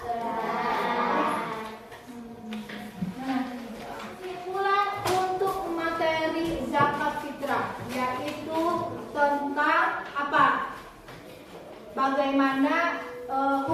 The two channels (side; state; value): both; identical; correlation 1.00